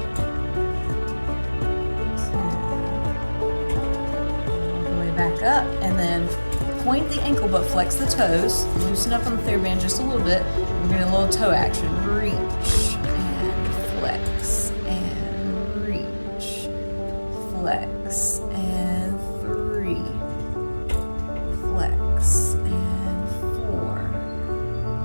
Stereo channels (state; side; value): inverted; both; correlation -1.00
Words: 10. Back up, and then point the ankle but flex the toes. Loosen up on the TheraBand just a little bit. We're getting a little toe action. Reach and flex and reach, flex and 3, flex